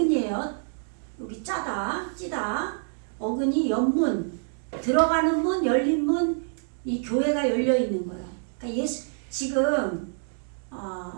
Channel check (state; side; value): silent; left; digital silence